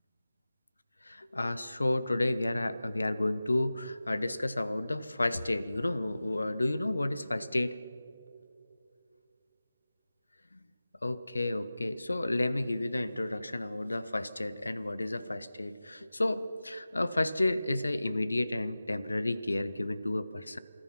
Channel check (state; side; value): inverted; both; correlation -0.96